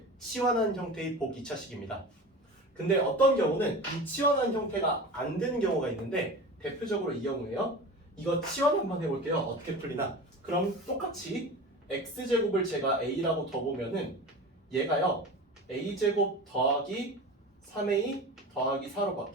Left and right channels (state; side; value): normal; both; correlation 0.32